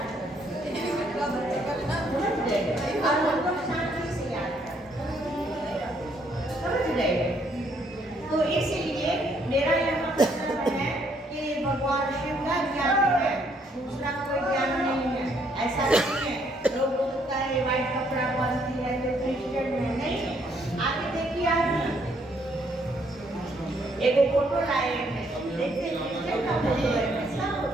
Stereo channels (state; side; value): normal; both; correlation 0.69